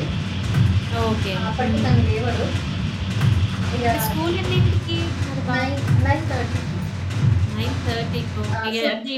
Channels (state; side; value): identical; both; correlation 1.00